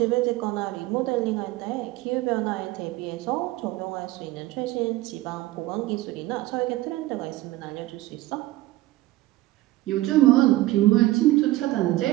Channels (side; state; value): left; quieter; 17.4 dB